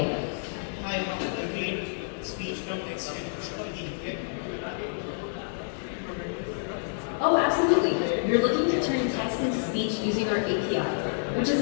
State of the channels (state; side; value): silent; right; 59 dB below the other